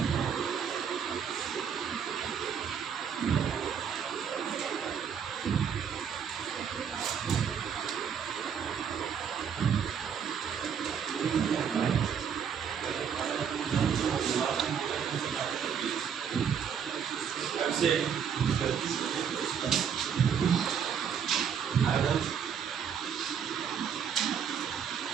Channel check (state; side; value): quieter; left; 7.6 dB